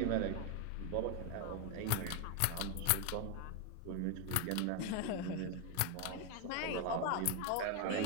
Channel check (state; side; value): different; both; correlation 0.01